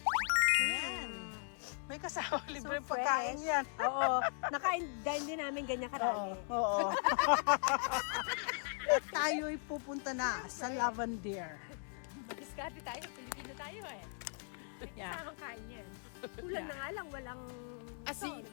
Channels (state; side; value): silent; right; 52 dB below the other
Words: Yan. May kasama libre So pagkain fresh. yan. Oo. Nakain din namin ganyan karami. Oo. At tayo'y pupunta na sa Lavender. Diskarte tayo, Pilipino tayo eh. Yeah. Kasamang kain yan. Kulang na nga lang, walang Asin. salt.